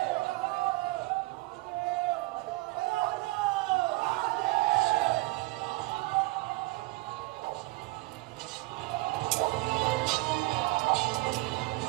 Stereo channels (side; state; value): left; quieter; 22.3 dB